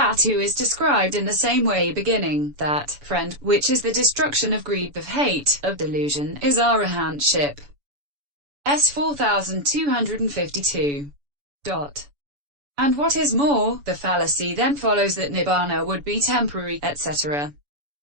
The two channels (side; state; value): left; late; 7.0 ms